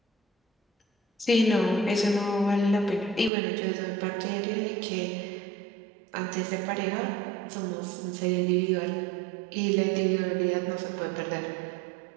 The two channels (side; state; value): left; drops out; at 3.3 s